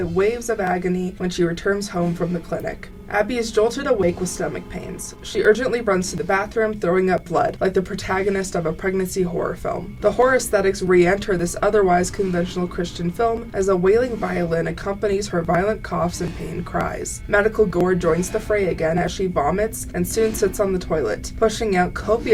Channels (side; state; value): both; identical; correlation 1.00